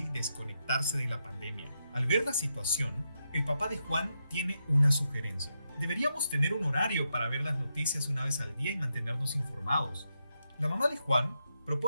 desconectarse de la pandemia. Al ver la situación, el papá de Juan tiene una sugerencia. Deberíamos tener un horario para ver las noticias una vez al día y mantenernos informados. La mamá de Juan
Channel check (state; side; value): inverted; both; correlation -0.83